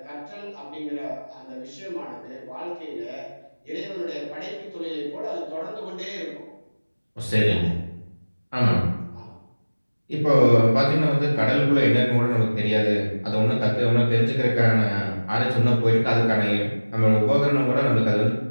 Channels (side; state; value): both; inverted; correlation -1.00